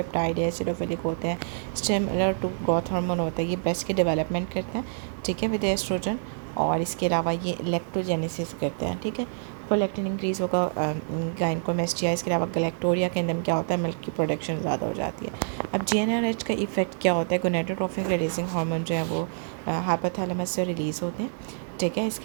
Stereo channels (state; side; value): silent; left; digital silence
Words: है, एसिडोफिलिक होते हैं, सिमिलर टू ग्रोथ हार्मोन होता है। ये ब्रेस्ट की डेवलपमेंट करते हैं, ठीक है, विद एस्ट्रोजन। और इसके अलावा ये इलेक्ट्रोजेनेसिस करते हैं, ठीक है। प्रोलैक्टिन इंक्रीज़ होगा गायनेकोमेस्टिया। इसके अलावा गैलेक्टोरिया के अंदर क्या होता है? मिल्क की प्रोडक्शन ज़्यादा हो जाती है। अब जीएनआरएच का इफेक्ट क्या होता है? गोनेडोट्रोपिक रिलीजिंग हार्मोन जो है वो हाइपोथैलेमस से रिलीज़ होते हैं, ठीक है।